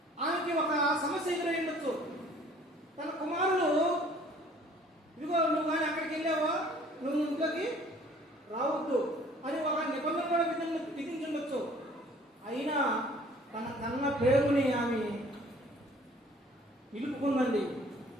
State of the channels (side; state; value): both; normal; correlation 0.54